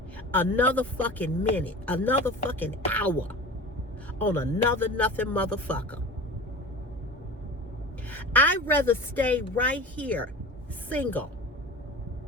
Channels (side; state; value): both; normal; correlation 0.35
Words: another fucking minute, another fucking hour on another nothing motherfucker. I'd rather stay right here, single